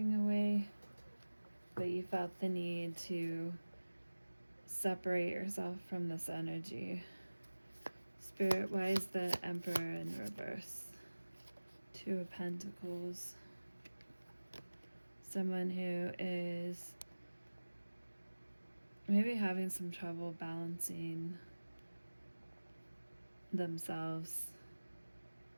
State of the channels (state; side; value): inverted; both; correlation -1.00